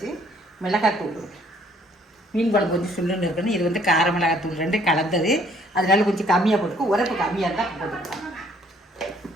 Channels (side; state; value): both; normal; correlation 0.62